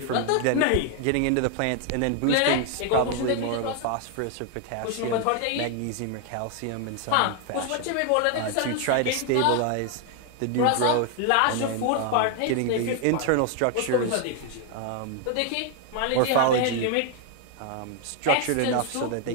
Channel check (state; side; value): different; both; correlation 0.01